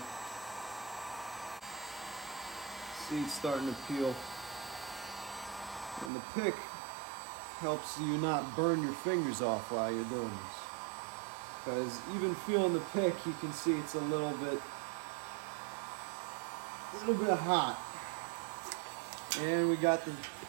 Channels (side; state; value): left; drops out; at 6.1 s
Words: See, it's starting to peel. And the pick helps you not burn your fingers off while you're doing this. Because even feeling the pick, you can see it's a little bit hot. And we got the